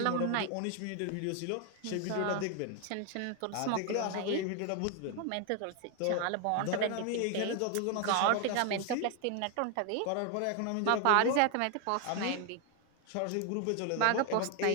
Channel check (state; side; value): different; both; correlation 0.01